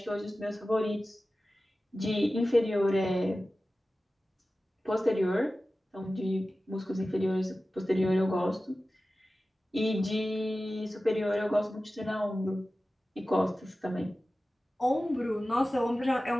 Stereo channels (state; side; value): normal; both; correlation 0.95